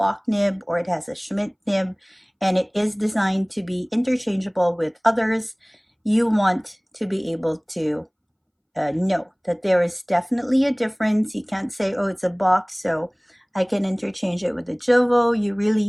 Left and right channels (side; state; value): both; identical; correlation 1.00